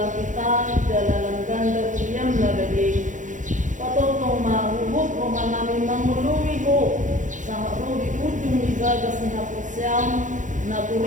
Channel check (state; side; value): late; left; 0.37 ms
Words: kita dalam ganda kuyam nabedi. Patotong mahubog o manami manguluwi ko sa rodi ujung igagas ni Hapusyam na